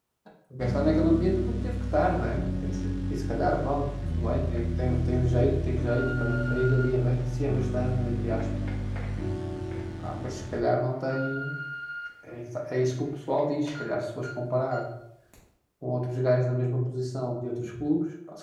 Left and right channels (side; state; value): both; identical; correlation 1.00